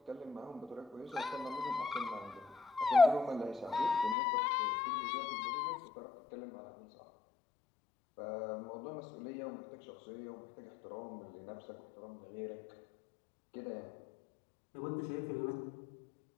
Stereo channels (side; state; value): right; drops out; at 4.2 s